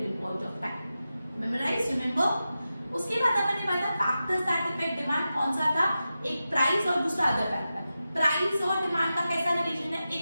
point of time. Memorize, remember? उसके बाद अपन ने पढ़ा factors that affect demand, कौन सा था, एक price और दूसरा अदर फैक्टर। प्राइस और डिमांड का कैसा रिलेशन है,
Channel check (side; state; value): both; inverted; correlation -0.92